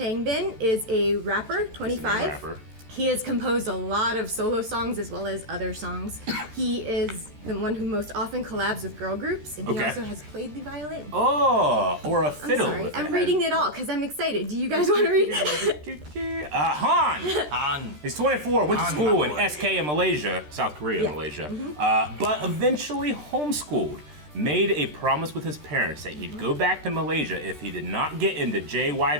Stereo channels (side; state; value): left; late; 13 ms